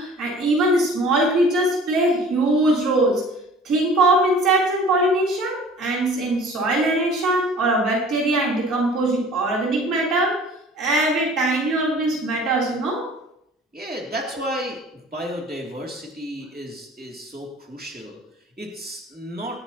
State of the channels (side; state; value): both; normal; correlation 0.47